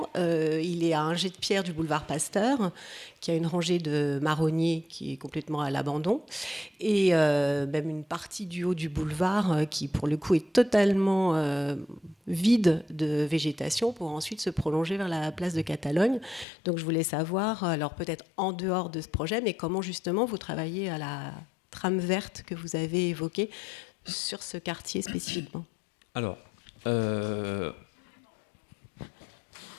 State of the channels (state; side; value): drops out; right; at 16.4 s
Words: Il est à un jet de pierre du boulevard Pasteur, qui a une rangée de marronniers qui est complètement à l'abandon, et même une partie du haut du boulevard qui, pour le coup, est totalement vide de végétation pour ensuite se prolonger vers la place de Catalogne. Donc je voulais savoir, alors peut-être en dehors de ce projet, mais comment justement vous travaillez à la trame verte que vous avez évoquée sur ce quartier spécifiquement. Alors,